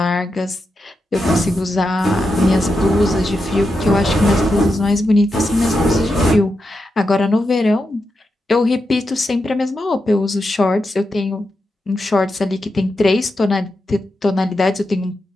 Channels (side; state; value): both; normal; correlation 0.87